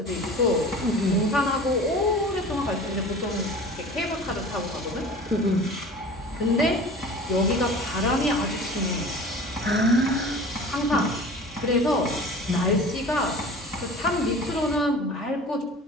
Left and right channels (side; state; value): both; normal; correlation 0.40